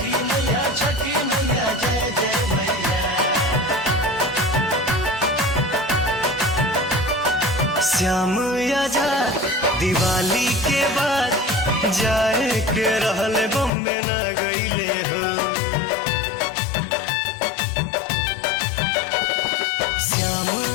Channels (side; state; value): right; drops out; at 13.7 s